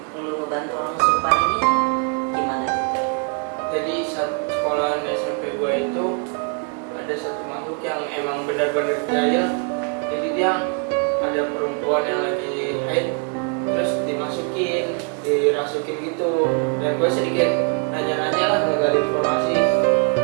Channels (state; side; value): quieter; left; 37.8 dB